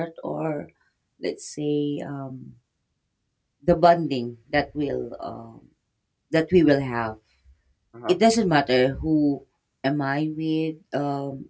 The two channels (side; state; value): both; identical; correlation 1.00